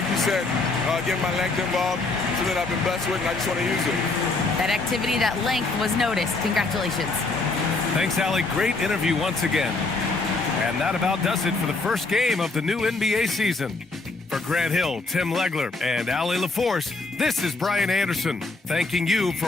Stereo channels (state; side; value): quieter; right; 3.5 dB